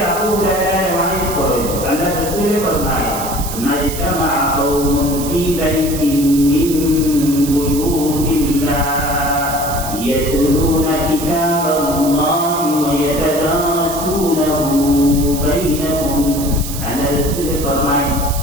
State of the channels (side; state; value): right; noise; hiss, 9 dB below the sound